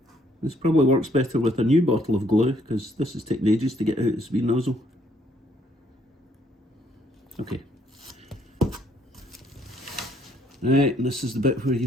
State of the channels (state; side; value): normal; both; correlation 0.68